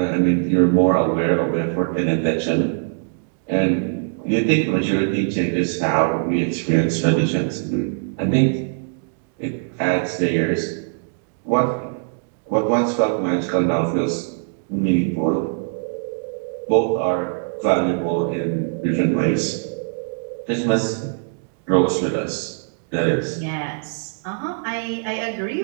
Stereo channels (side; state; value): left; silent; digital silence